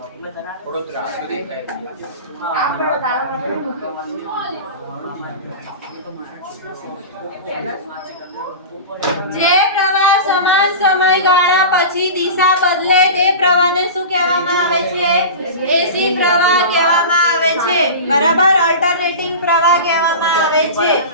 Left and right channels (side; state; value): both; inverted; correlation -0.30